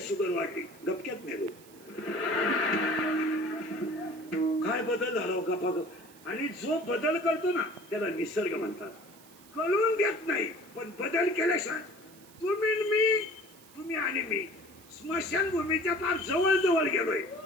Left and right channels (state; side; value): noise; right; hiss, 24 dB below the sound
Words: शुगर वाढली, गपक्यात मेलो. काय बदल झाला गपागप. आणि जो बदल करतो ना त्याला निसर्ग म्हणतात. कळून देत नाही, पण बदल केल्याशिवाय तुम्ही आणि मी स्मशानभूमीच्या फार जवळ जवळ गेलोय